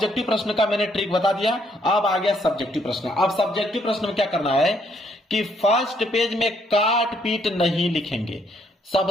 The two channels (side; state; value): both; normal; correlation 0.70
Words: प्रश्न का मैंने ट्रिक बता दिया। अब आ गया सब्जेक्टिव प्रश्न। अब सब्जेक्टिव प्रश्न में क्या करना है कि फर्स्ट पेज में काट पीट नहीं लिखेंगे।